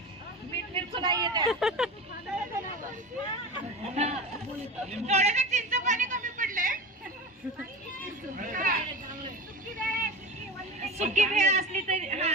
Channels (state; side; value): normal; both; correlation 0.30